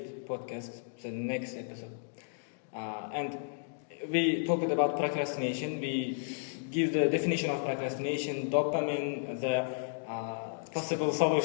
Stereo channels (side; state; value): right; silent; digital silence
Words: podcast, the next episode. And we talked about procrastination. We give the definition of procrastination, dopamine, the possible